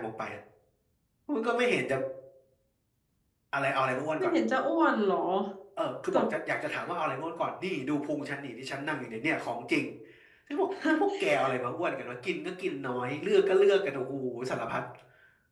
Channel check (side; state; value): both; identical; correlation 1.00